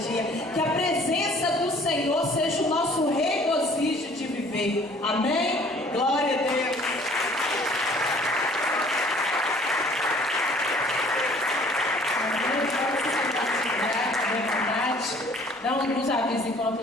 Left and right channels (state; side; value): normal; both; correlation 0.55